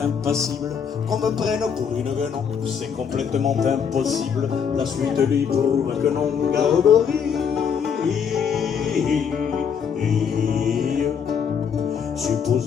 impassible, qu'on me prenne pour une guenon, c'est complètement impossible, la suite lui prouve que non. Gargorie,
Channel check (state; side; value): quieter; right; 7.1 dB